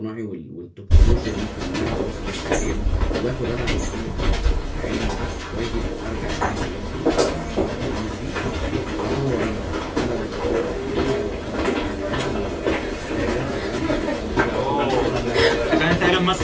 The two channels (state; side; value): identical; both; correlation 1.00